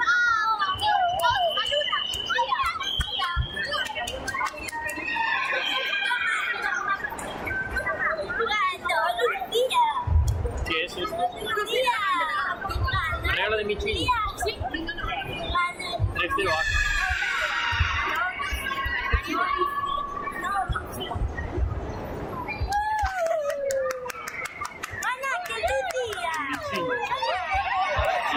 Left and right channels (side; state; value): both; identical; correlation 1.00